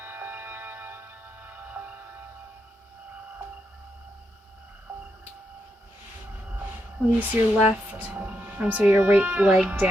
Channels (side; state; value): both; normal; correlation 0.83